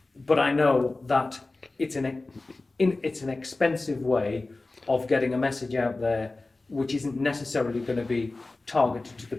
but I know that it's an expensive way of getting a message out there, which isn't necessarily going to be targeted to the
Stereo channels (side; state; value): right; quieter; 3.2 dB